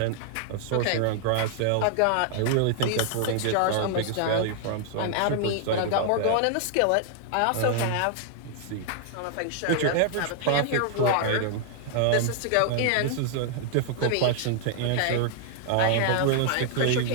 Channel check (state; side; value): different; both; correlation 0.00